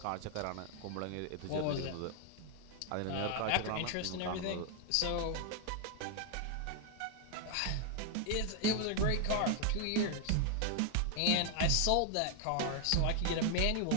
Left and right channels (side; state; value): both; different; correlation 0.00